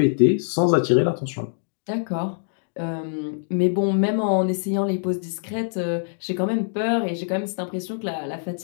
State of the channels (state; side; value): silent; right; digital silence